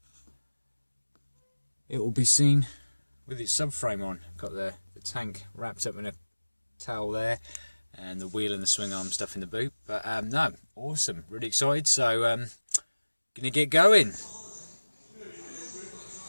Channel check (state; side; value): inverted; both; correlation -1.00